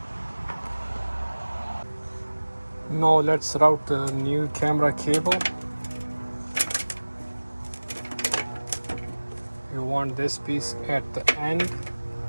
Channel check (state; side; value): inverted; both; correlation -1.00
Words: Now let's route the new camera cable. You want this piece at the end